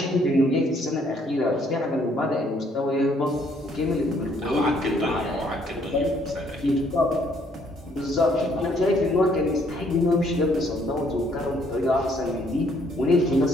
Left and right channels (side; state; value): both; normal; correlation 0.66